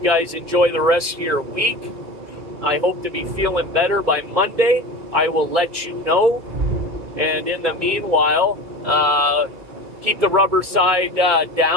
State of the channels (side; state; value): left; late; 2.3 ms